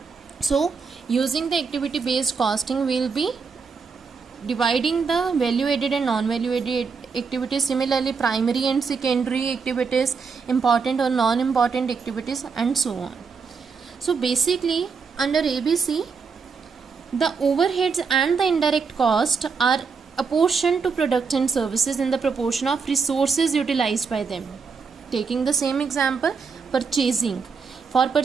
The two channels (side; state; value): left; quieter; 5.4 dB